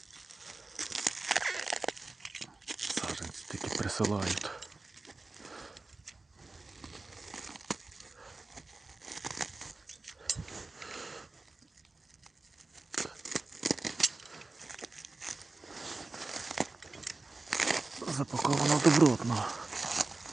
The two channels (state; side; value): quieter; left; 3.4 dB